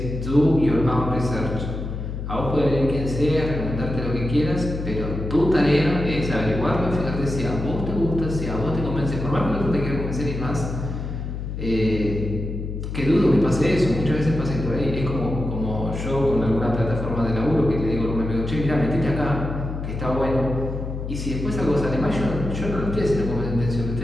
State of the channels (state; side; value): noise; left; hum, 5 dB below the sound